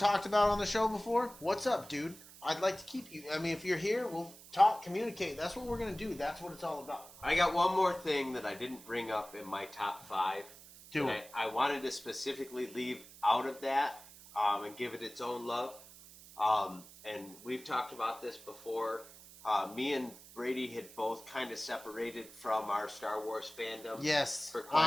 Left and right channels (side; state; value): right; noise; hiss, 19 dB below the sound